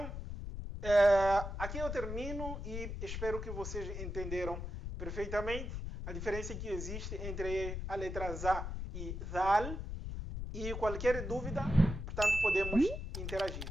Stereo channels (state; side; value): noise; left; rumble, 5 dB below the sound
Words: aqui eu termino e espero que vocês entenderam perfeitamente a diferença que existe entre a letra ZA e ZAL. E qualquer dúvida, portanto, podemos interagir.